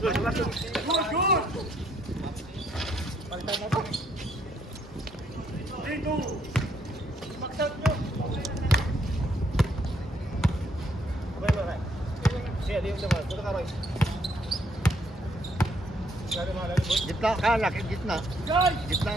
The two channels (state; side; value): normal; both; correlation 0.70